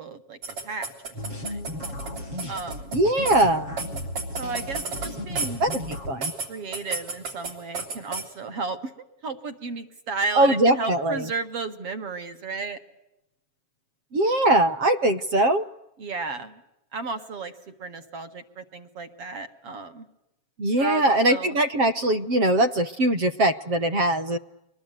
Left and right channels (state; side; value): late; left; 7.3 ms